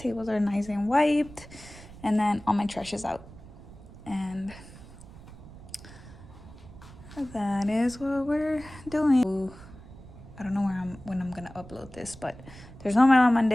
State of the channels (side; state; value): right; noise; rumble, 18 dB below the sound